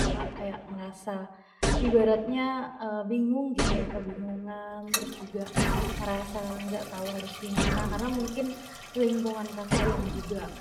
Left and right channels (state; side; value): identical; both; correlation 1.00